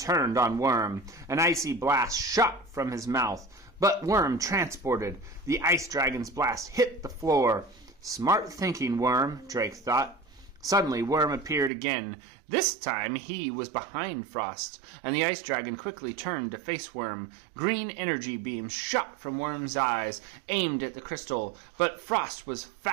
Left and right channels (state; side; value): drops out; left; at 11.7 s